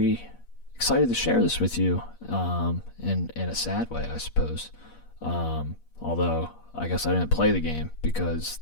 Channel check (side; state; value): right; late; 8.4 ms